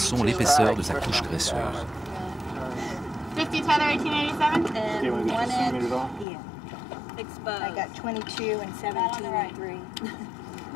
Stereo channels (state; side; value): drops out; right; at 6.2 s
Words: l'épaisseur de sa couche graisseuse. 50 Tether 1887? Okay, want to get One the end, centimeters off? yeah. I got 22 and 17 and 3.